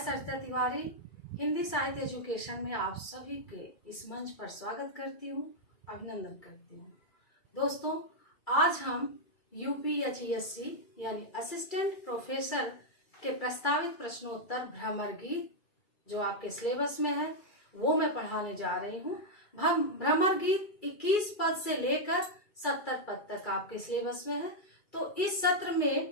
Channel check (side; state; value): right; late; 2.3 ms